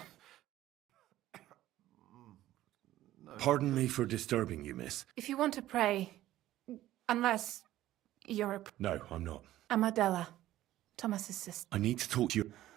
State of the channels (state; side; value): quieter; left; 14.4 dB